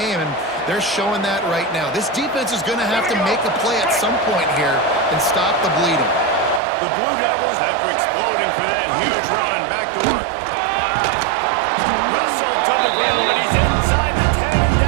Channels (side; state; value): left; drops out; at 6.6 s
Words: and they're showing that right now. This defense is going to have to make a play at some point here and stop the bleeding. The Blue Devils, after exploding for that huge run, back to work. Russell to the ground, but he's inside the 10 and